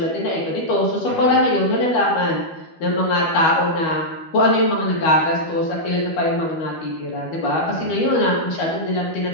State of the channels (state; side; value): late; right; 12 ms